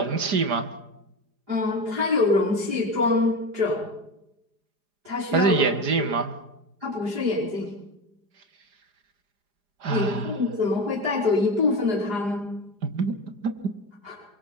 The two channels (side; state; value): left; late; 4.9 ms